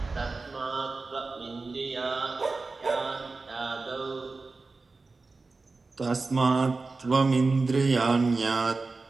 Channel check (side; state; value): left; quieter; 3.8 dB